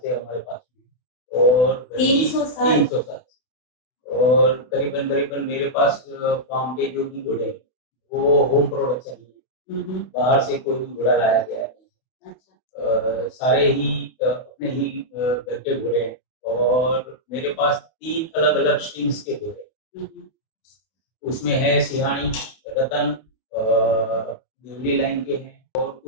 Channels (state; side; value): late; right; 32 ms